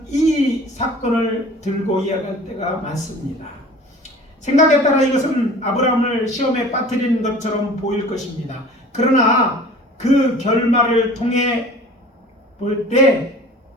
이 사건을 들고 이야기할 때가 많습니다. 생각에 따라 이것은 아브라함을 시험에 빠뜨리는 것처럼 보일 것입니다. 그러나 그 결말을 통해 볼 때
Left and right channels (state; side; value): normal; both; correlation 0.44